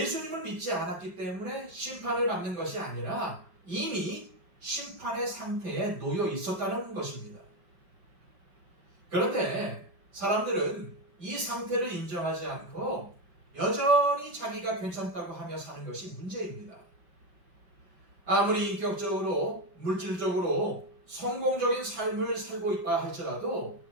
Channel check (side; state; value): left; late; 5.5 ms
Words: 믿지 않았기 때문에 심판을 받는 것이 아니라 이미 심판의 상태에 놓여 있었다는 것입니다. 그런데 사람들은 이 상태를 인정하지 않고 여전히 자기가 괜찮다고 하며 사는 것이 문제입니다. 아무리 인격적으로, 물질적으로 성공적인 삶을 살고 있다 할지라도